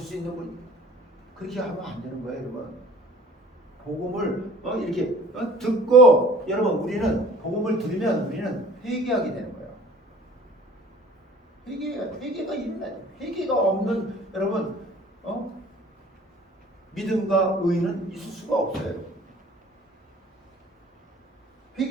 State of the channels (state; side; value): normal; both; correlation 0.49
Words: 수 있는 분. 그렇게 하면 안 되는 거예요, 여러분. 복음을 이렇게 듣고 여러분 우리는 복음을 들으면 우리는 회개하게 되는 거예요. 회개가 일어나요. 회개가 없는 여러분 믿음과 의는 있을 수가 없어요.